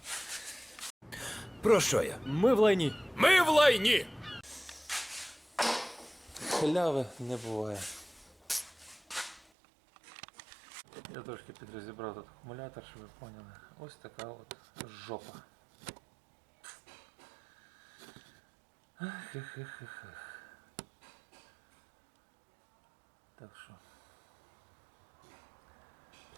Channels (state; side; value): drops out; left; at 9.5 s